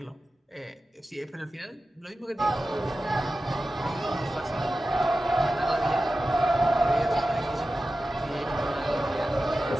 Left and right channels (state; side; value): normal; both; correlation 0.94